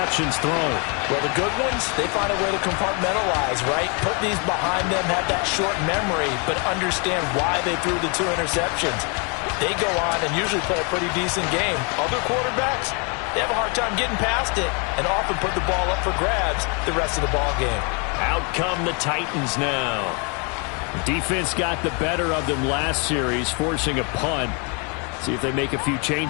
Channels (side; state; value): right; quieter; 34.4 dB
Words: thrown. Well, the good ones, they find a way to compartmentalize, right? Put these behind them, have that short memory, but understand why they threw the 2 interceptions. They go on and usually play a pretty decent game. Other quarterbacks, they have a hard time getting past it and often put the ball up for grabs the rest of the ball game. Out come the Titans now. Defense got the better of them last series, forcing a punt. See if they make a few